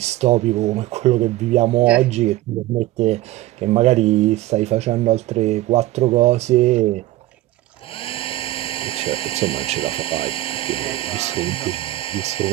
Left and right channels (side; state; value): left; quieter; 16.6 dB